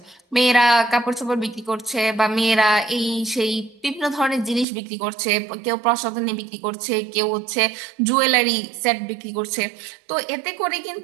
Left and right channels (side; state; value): left; drops out; at 4.7 s